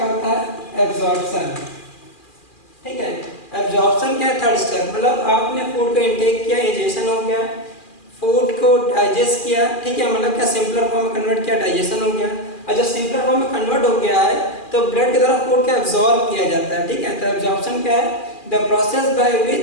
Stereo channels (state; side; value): late; right; 2.4 ms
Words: होता है? एब्जॉर्प्शन। ठीक है। एब्जॉर्प्शन क्या है, थर्ड स्टेप, मतलब आपने फूड को इनटेक किया, डाइजेशन हो गया, फूड को डाइजेस्ट किया, ठीक है, मतलब क्या सिंपलर फॉर्म में कन्वर्ट किया, डाइजेशन हो गया, और जब सिंपलर फॉर्म में कन्वर्ट हो गया है तो ब्लड की तरफ फूड को एब्जॉर्ब किया जाता है, ठीक है। तो एब्जॉर्प्शन क्या है, the process by